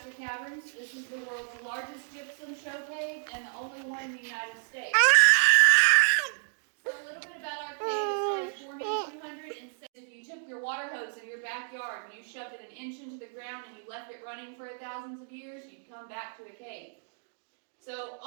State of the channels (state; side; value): silent; left; digital silence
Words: Caverns. This is the world's largest gypsum show cave and the only one in the United States. So a little bit about our cave. It started forming 206. If you took your water hose in your backyard and you shoved it an inch into the ground and you left it running for thousands of years, you'd come back to a cave. So